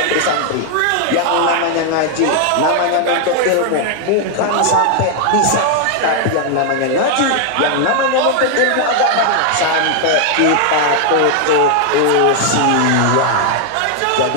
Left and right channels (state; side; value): different; both; correlation 0.00